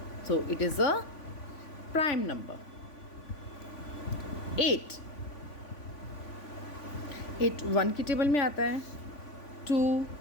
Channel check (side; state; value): right; late; 3.5 ms